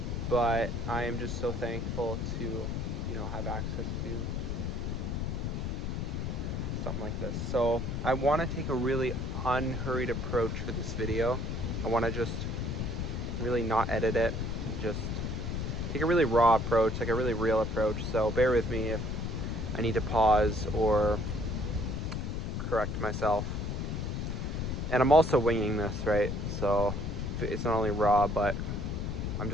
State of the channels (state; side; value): noise; left; rumble, 2 dB below the sound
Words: but I am just so thankful to, have access to something like this. So I want to take a really unhurried approach for this video. I want to just really not edit it, and just take a really raw approach, like a really real approach. So bear with me if I need to pause or correct myself. And I'm also winging this, right? So it's not only raw, but I'm